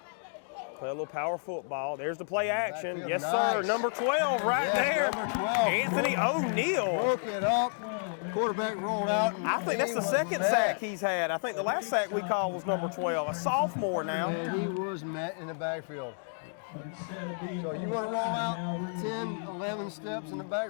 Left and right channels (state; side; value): silent; right; digital silence